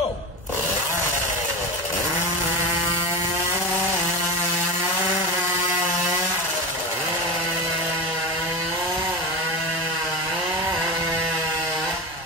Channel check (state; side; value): normal; both; correlation 0.22